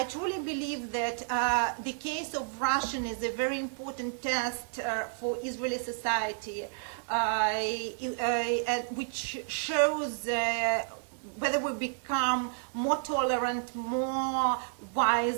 truly believe that the case of Russian is a very important test for Israeli society, which shows whether we become more tolerant, more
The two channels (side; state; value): left; silent; digital silence